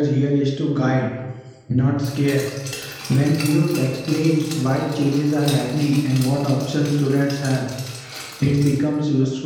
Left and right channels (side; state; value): both; identical; correlation 1.00